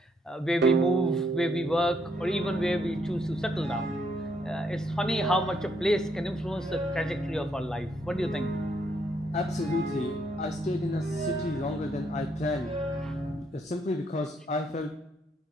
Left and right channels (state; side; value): normal; both; correlation 0.73